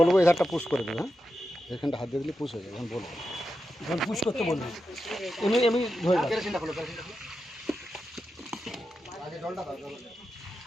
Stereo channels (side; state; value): both; normal; correlation 0.89